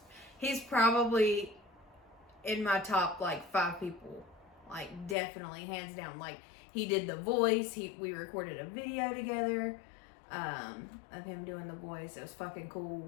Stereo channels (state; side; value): drops out; right; at 5.2 s